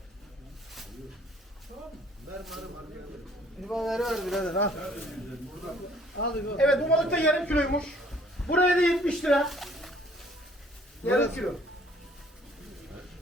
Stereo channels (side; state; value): both; normal; correlation 0.58